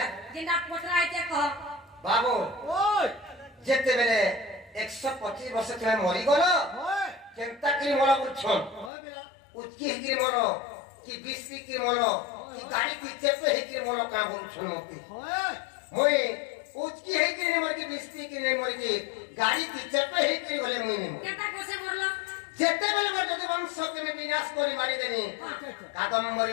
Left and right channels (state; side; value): drops out; right; at 8.9 s